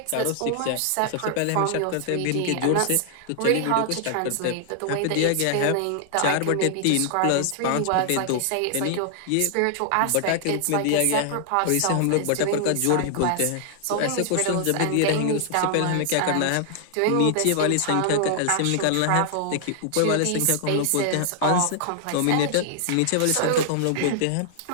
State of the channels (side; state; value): both; different; correlation 0.00